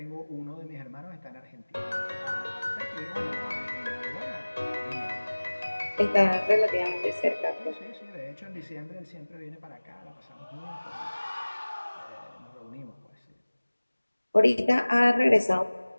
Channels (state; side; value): inverted; both; correlation -1.00